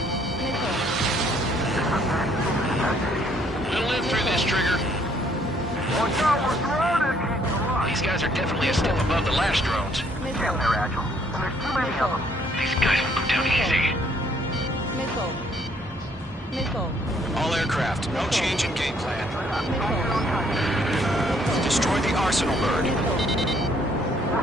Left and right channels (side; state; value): both; normal; correlation 0.65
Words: Missile. We'll live through this, Trigger. Watch out, we're surrounded! These guys are definitely a step above the last drones. Damn, they're agile. And there's too many of them. These guys will go down easy. Missile. Missile. All aircraft, no change in game plan. Missile. Destroy the Arsenal bird. Missile.